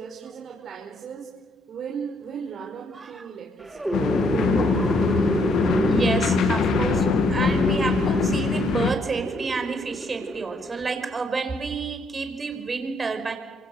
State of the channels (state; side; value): normal; both; correlation 0.70